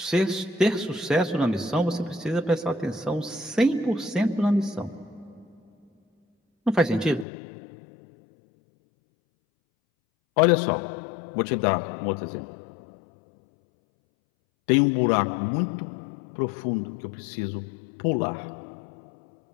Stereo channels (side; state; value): right; drops out; at 7.2 s